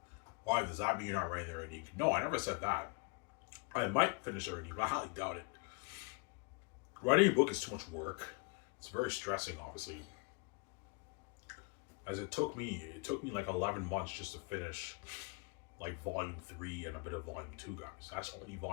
Why does that mean you're not writing the reading? No, I never said that. I might finish the reading, but I highly doubt it. Writing a book is too much work. It's very stressing, obviously. As it took me like 11 months just to finish like volume 3 and a bit of volume 2, guys. That's only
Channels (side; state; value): right; quieter; 32.7 dB